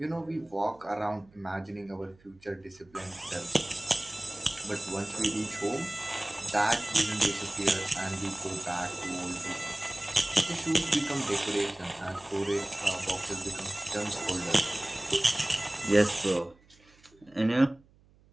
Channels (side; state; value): right; noise; hum, 29 dB below the sound